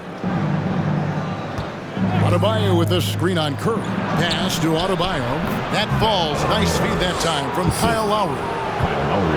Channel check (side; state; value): both; identical; correlation 1.00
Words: Adebayo with the screen on Curry. Pass to Adebayo. That falls. Nice feed that time from Kyle Lowry.